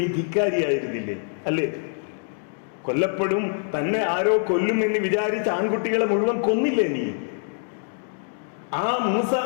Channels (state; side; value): silent; right; 62 dB below the other